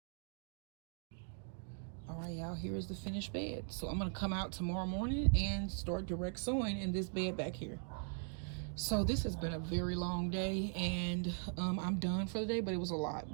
y'all, here is the finished bed. So I'm gonna come out tomorrow morning and start direct sewing in this bed back here. So this has been a very long day, and I'm done for the day, but it was a lot.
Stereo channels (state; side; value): silent; left; 51 dB below the other